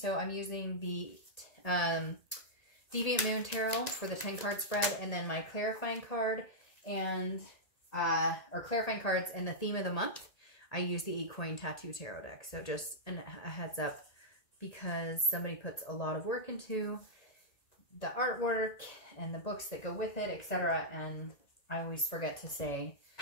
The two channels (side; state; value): right; late; 1.9 ms